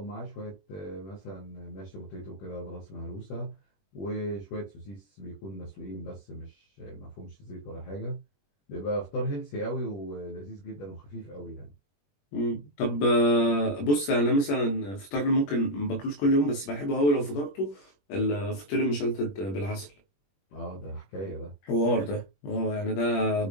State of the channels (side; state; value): right; late; 21 ms